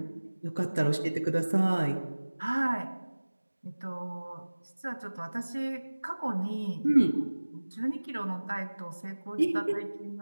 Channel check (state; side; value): inverted; both; correlation -1.00